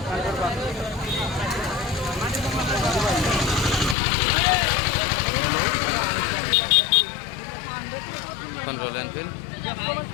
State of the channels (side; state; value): right; drops out; at 4.0 s